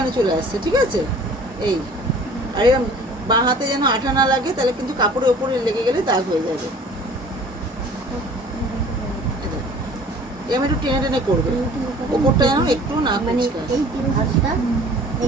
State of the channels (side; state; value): both; normal; correlation 0.48